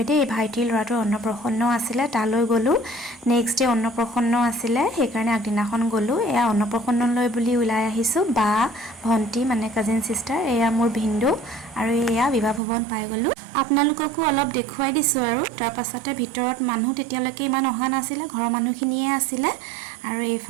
दे भाइटिर लराटो अन्नप्रसन्न आसिले ताলৈ गलु नेक्स्ट डे अन्नप्रसन्न आसिले हेकारणे আগদিনাখন गलु एया अन्नप्रसन्नলৈ बुली उলাই आहिसु बा भंटी माने काजिन सिस्टर एया मोर भिन्दु आरो एया विवाह भवन पाइ गलु आपनालोककো অলপ দেখুৱাই দিছো আৰু তাৰ পাছতে ভিতৰত মানুহ তেতিয়ালৈকে ইমান অহা নাছিলে ঘৰৰ মানুহখিনিয়ে আছিলে আৰু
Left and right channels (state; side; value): drops out; left; at 12.6 s